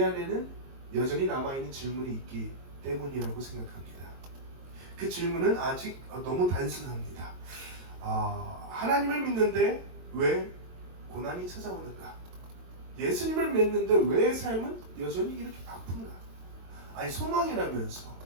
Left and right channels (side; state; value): left; late; 22 ms